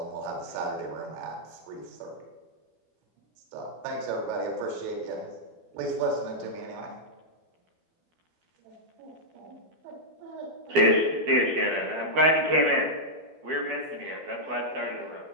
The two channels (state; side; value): late; left; 12 ms